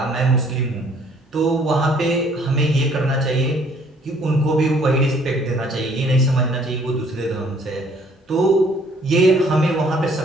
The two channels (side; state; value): both; normal; correlation 0.60